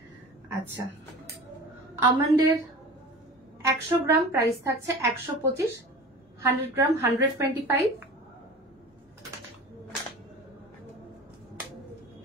আচ্ছা, আমন্ডের 100 গ্রাম প্রাইস থাকছে 125, 100 গ্রাম 125,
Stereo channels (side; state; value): both; normal; correlation 0.37